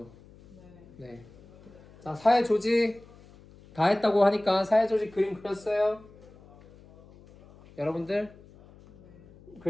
네. 네. 자, 사회 조직 다 했다고 하니까 사회 조직 그림 그렸어요? 여러분들? 네.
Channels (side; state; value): left; noise; hum, 23 dB below the sound